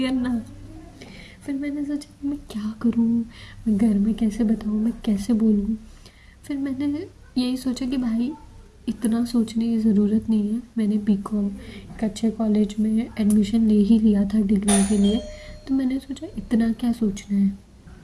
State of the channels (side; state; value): both; identical; correlation 1.00